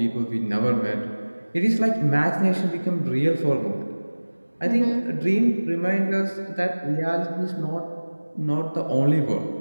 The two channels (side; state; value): both; inverted; correlation -1.00